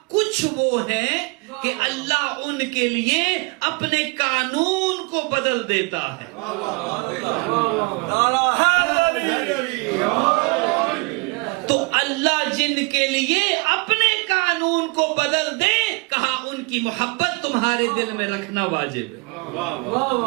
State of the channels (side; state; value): left; quieter; 28.8 dB